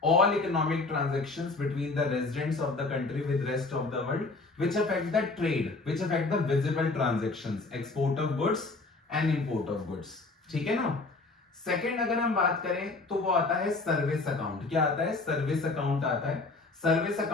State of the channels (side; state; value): right; quieter; 3.6 dB